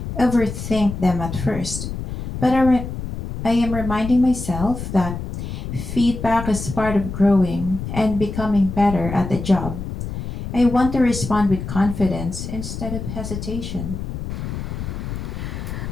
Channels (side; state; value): left; noise; rumble, 7 dB below the sound